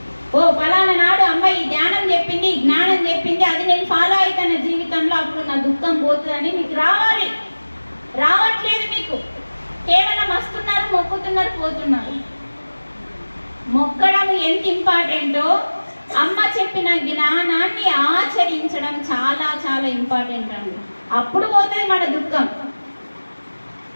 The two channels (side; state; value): both; inverted; correlation -1.00